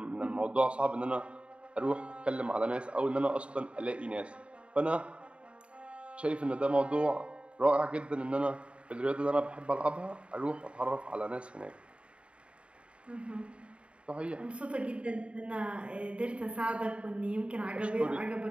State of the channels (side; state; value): left; late; 0.059 ms